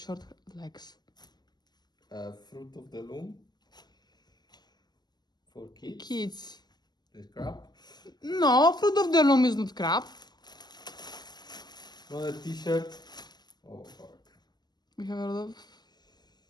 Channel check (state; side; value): late; right; 0.20 ms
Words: legs. Fruit of the loom. For kids. Kids. The crab. No, fruit of the loom is not crab. Another t-shirt. Oh fuck. We have a lot of...